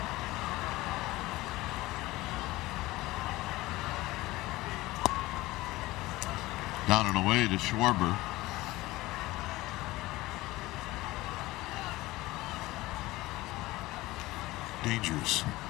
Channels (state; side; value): quieter; right; 18.9 dB